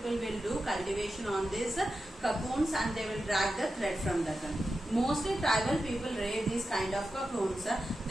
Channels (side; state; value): both; normal; correlation 0.91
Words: will do cultivation on these cocoons and they will drag the thread from that one. Mostly tribal people rear these kind of cocoons.